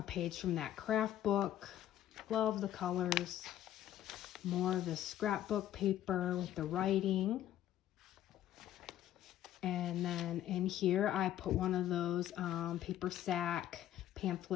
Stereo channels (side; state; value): right; quieter; 12.2 dB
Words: page from that craft book. Love the colors. More of the scrapbook paper with the writing. And then in here I put one of those paper sack